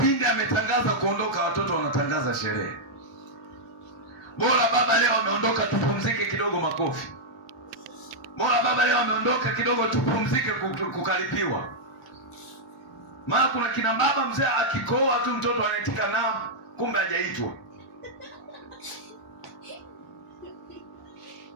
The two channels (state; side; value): normal; both; correlation -0.05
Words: ametangaza kuondoka, watoto wanatangaza sherehe. Bora baba leo ameondoka, tupumzike kidogo, makofi. Bora baba leo ameondoka kidogo, tupumzike, kukaripiwa. Maana kuna kina baba mzee akikoa tu mtoto anaitika naam, kumbe hajaitwa.